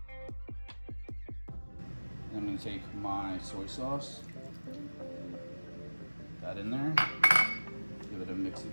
I'm going to take my soy sauce, that in there, give it a mix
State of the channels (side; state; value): both; inverted; correlation -1.00